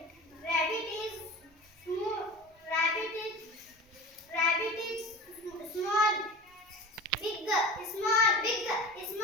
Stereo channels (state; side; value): normal; both; correlation 0.34